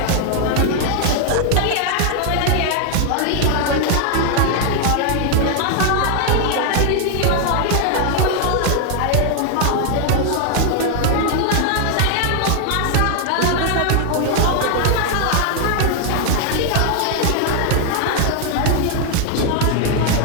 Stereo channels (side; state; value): both; different; correlation 0.00